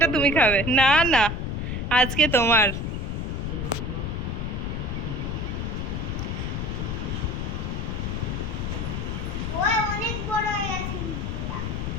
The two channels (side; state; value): left; noise; rumble, 2 dB below the sound